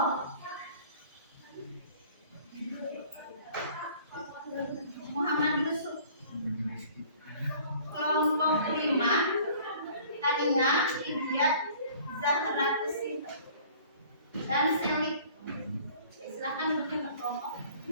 Muhammad Yusuf. Kelompok 5 tadinya Ibyat Zahra Kusip dan Selik. Silakan duduk ke kelompok.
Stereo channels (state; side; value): inverted; both; correlation -0.51